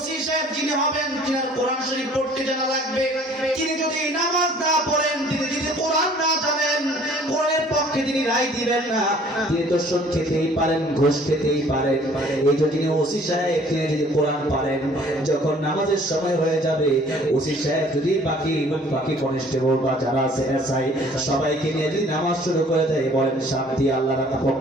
সাহেব যিনি হবেন, যিনার কোরআন শরীফ পড়তে জানা লাগবে, তিনি যদি নামাজ না পড়েন, তিনি যদি কোরআন না জানেন, কোরআনের পক্ষে তিনি রায় দিবেন না। তিনি তো সুদ খেতেই পারেন, ঘুষ খেতেই পারেন। এই যে যিনি ওসি সাহেব, তিনি যদি কোরআন পারেন, যখন নামাজের সময় হয়ে যাবে, ওসি সাহেব যদি বাকি কনস্টেবল বা যারা আছে এসআই সবাইকে নিয়ে যদি নামাজ শুরু করে দেয়, বলেন শান্তি আল্লাহর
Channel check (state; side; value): normal; both; correlation 0.55